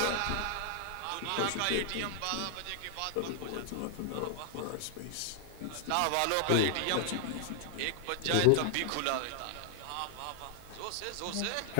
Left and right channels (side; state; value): both; different; correlation -0.01